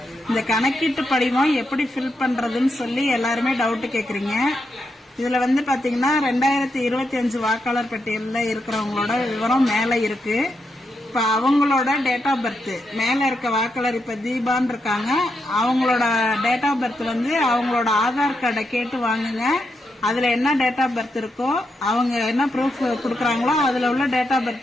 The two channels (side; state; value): both; normal; correlation 0.83